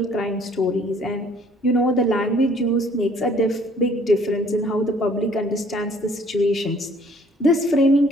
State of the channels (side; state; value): both; normal; correlation 0.58